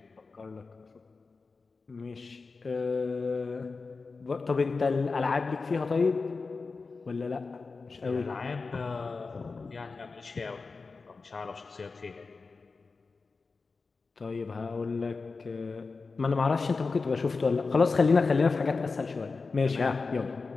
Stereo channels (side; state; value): right; quieter; 4.2 dB